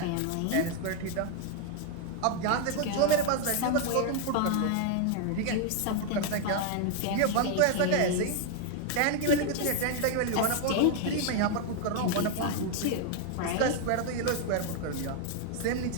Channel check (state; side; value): different; both; correlation 0.00